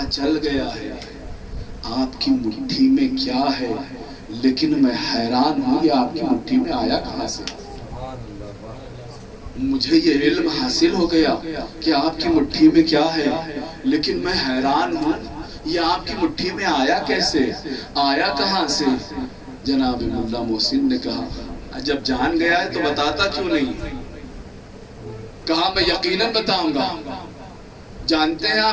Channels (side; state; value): both; identical; correlation 1.00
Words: چل گیا ہے آپ کی مٹھی میں کیا ہے, لیکن میں حیران ہوں یہ آپ کی مٹھی میں آیا کہاں سے. مجھے یہ علم حاصل ہو گیا کہ آپ کی مٹھی میں کیا ہے, لیکن میں حیران ہوں یہ آپ کی مٹھی میں آیا کیسے, آیا کہاں سے. جناب ملا محسن نے کہا جب جان گیا ہے تو بتاتا کیوں نہیں. کہا میں یقیناً بتاؤں گا. جانتے ہیں